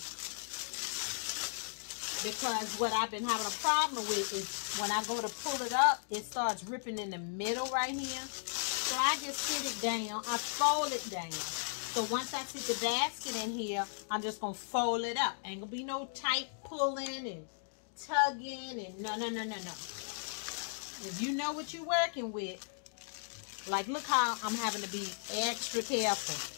Because what I've been having a problem with is when I go to pull it up, it starts ripping in the middle right here. So I just sit it down. I fold it down. So once I sit the basket in here, I'm just going to fold it up. Ain't going to be no tight pulling and tugging and no. If you know what you're working with, like, look how I'm having to be extra careful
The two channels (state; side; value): silent; right; digital silence